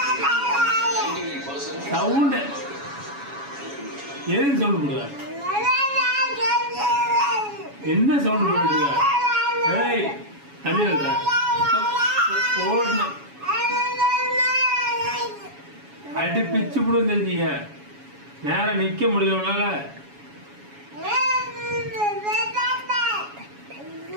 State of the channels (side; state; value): left; late; 7.2 ms